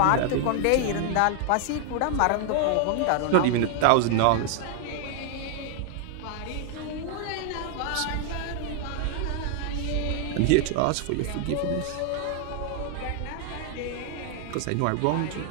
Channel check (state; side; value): different; both; correlation 0.00